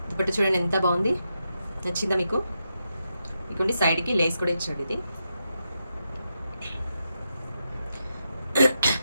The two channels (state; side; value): inverted; both; correlation -0.86